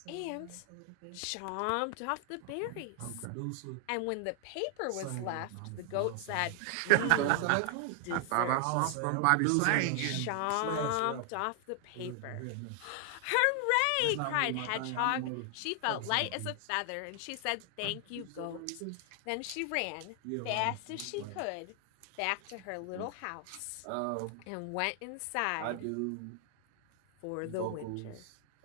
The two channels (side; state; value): both; different; correlation 0.00